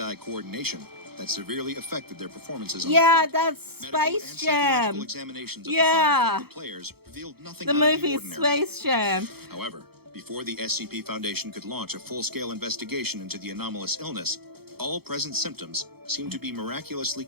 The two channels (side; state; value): left; late; 0.96 ms